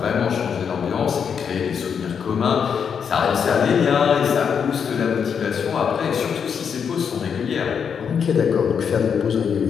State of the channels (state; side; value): quieter; right; 7.0 dB